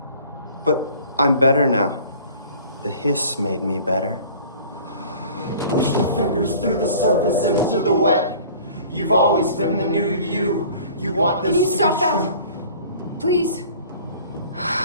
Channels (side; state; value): both; inverted; correlation -0.48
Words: But I'm better now. The Hiss made me better. Push the fingers through the surface into the wet. You've always been the new you. You want this Can you to stop be that? true. Please.